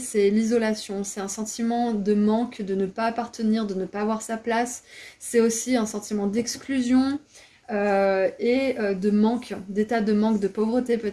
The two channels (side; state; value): both; identical; correlation 1.00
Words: l'isolation, c'est un sentiment de manque, de ne pas appartenir, de ne pas avoir sa place. C'est aussi un sentiment d'exclusion et de manque, d'état de manque, de pauvreté